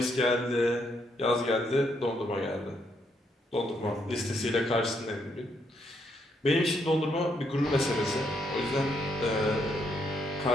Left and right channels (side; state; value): both; normal; correlation 0.75